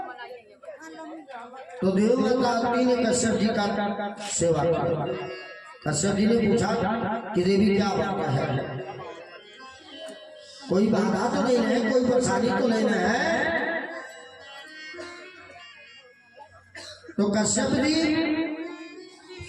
तो देव माता अदिति ने कश्यप जी का सेवा किया। कश्यप जी ने पूछा कि देवी क्या बात है, कोई बाधा तो नहीं है, कोई परेशानी तो नहीं है। तो कश्यप जी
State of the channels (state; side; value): identical; both; correlation 1.00